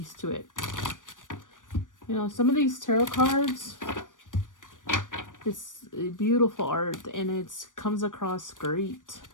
to it. You know, some of these tarot cards, it's beautiful art, and it comes across great.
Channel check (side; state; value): right; late; 0.88 ms